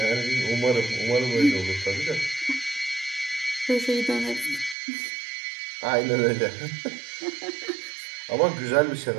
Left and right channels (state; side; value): drops out; left; at 4.8 s